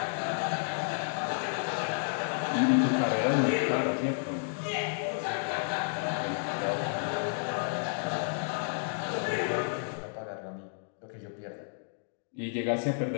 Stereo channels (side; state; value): right; silent; digital silence